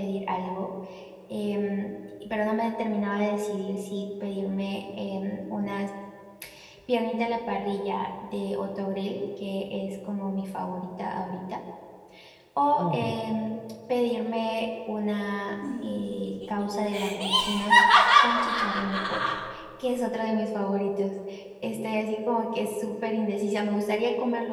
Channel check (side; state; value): both; identical; correlation 1.00